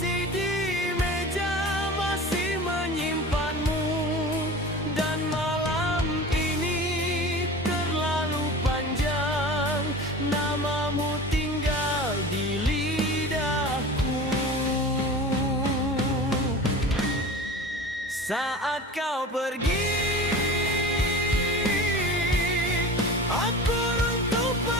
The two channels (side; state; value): both; normal; correlation 0.35